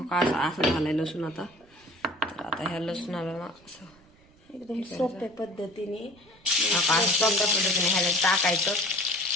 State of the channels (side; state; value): right; noise; rumble, 28 dB below the sound